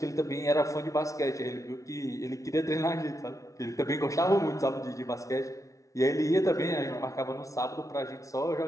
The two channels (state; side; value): late; right; 0.16 ms